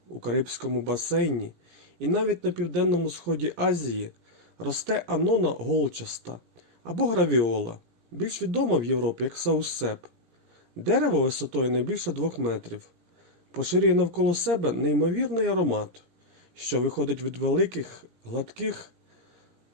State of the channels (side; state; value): left; late; 17 ms